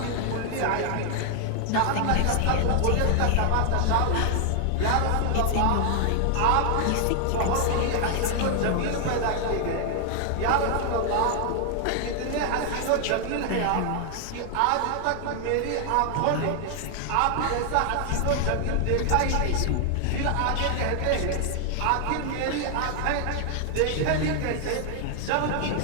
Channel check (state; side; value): different; both; correlation 0.00